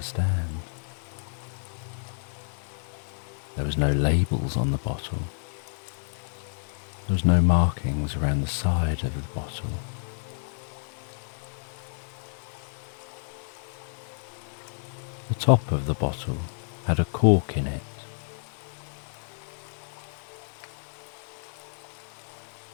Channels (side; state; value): right; silent; 58 dB below the other